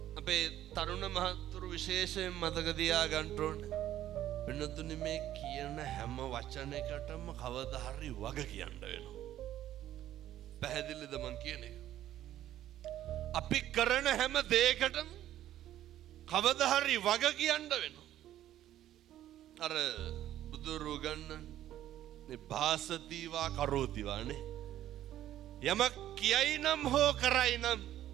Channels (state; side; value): quieter; left; 12.6 dB